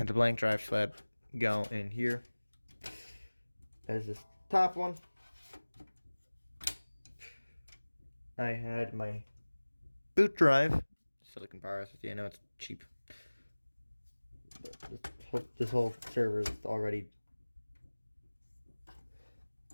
the blank drive sled go in here as this top one. I had my boot drive, silicon power SSD. I know it's cheap. This whole server is already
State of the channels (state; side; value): inverted; both; correlation -1.00